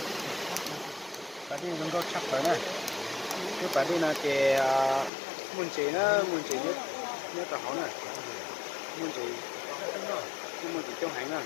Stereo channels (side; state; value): right; drops out; at 5.1 s